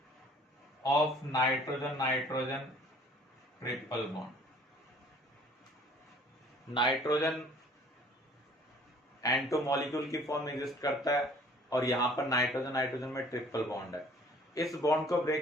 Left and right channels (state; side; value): normal; both; correlation 0.54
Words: Of nitrogen nitrogen triple bond. Nitrogen N2 molecule की फॉर्म में एग्जिस्ट करता है और यहां पर नाइट्रोजन नाइट्रोजन में ट्रिपल बॉन्ड है। इस बॉन्ड को